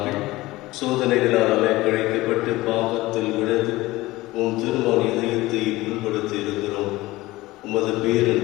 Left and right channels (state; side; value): quieter; right; 19.0 dB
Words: சோதனைகளால் அலைக்கழிக்கப்பட்டு பாவத்தில் விழுந்து உம் திருமண இதயத்தை புண்படுத்தி இருக்கிறோம். உமது